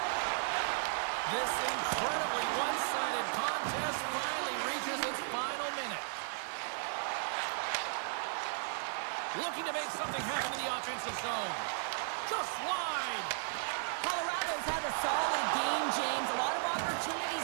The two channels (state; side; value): silent; left; digital silence